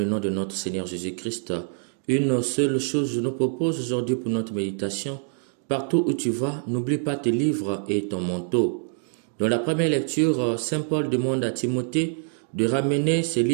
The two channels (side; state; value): left; silent; 62 dB below the other